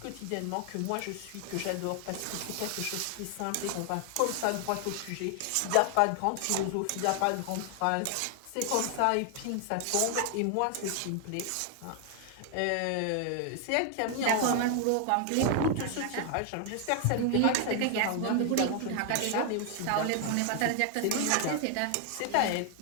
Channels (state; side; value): different; both; correlation 0.00